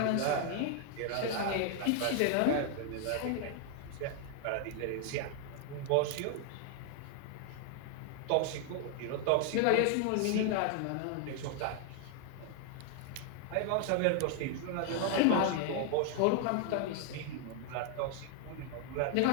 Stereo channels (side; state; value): both; different; correlation 0.00